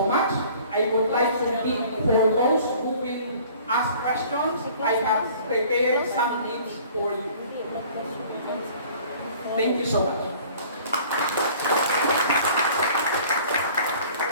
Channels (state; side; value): inverted; both; correlation -0.50